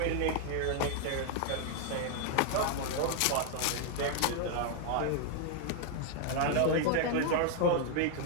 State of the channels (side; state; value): both; different; correlation 0.00